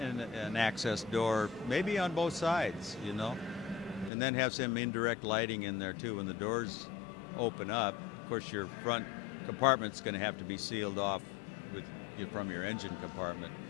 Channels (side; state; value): right; drops out; at 4.1 s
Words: access door, maybe on both sides, and then have some indirect lighting in there too. When the doors open up, of course, your front compartment's going to have to be sealed off from your engine compartment,